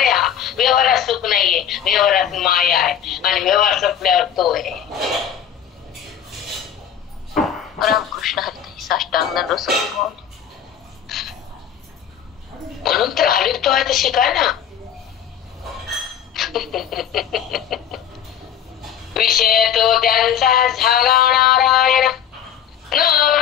व्यवहारात सुख नाहीये, व्यवहारात माया आहे, आणि व्यवहार संपल्यावर तो आहे. रामकृष्ण हरी. साष्टांग दंडवत माऊली. म्हणून तर हरितो आहे तर शिकाय ना. विषय तो त्यांचा झाला नारायण,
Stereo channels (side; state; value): right; quieter; 9.1 dB